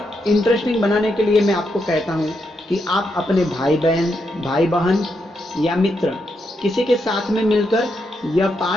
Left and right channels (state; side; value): normal; both; correlation 0.81